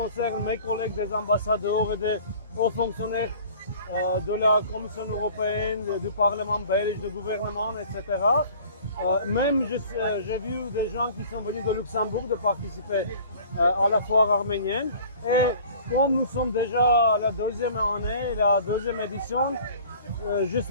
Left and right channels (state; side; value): inverted; both; correlation -0.47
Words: mes collègues des ambassadeurs et des hauts fonctionnaires de la Commission européenne, du Parlement belge, du gouvernement, etc. Même j'ai vu des gens qui sont venus de Luxembourg de participer à la foire arménienne. Et comme nous sommes déjà à la deuxième année, la deuxième édition, je